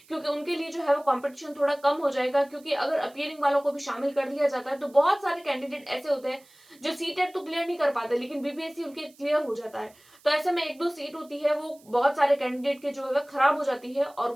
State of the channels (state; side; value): noise; right; hiss, 28 dB below the sound